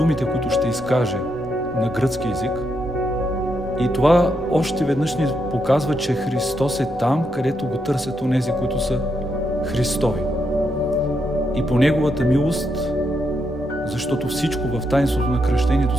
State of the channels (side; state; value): both; normal; correlation 0.81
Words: които ще изкаже на гръцки език. И това още веднъж ни показва, че Христос е там, където го търсят онези, които са Христови. И по Неговата милост, защото всичко в таинството на кръщението